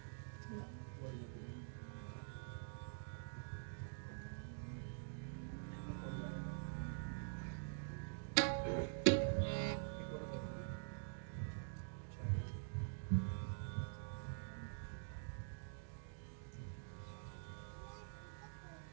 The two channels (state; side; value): silent; left; digital silence